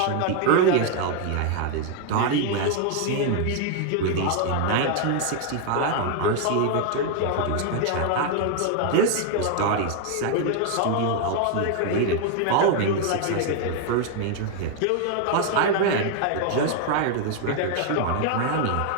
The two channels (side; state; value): both; different; correlation 0.00